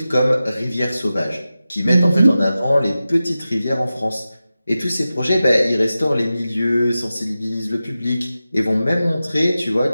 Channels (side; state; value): both; inverted; correlation -0.94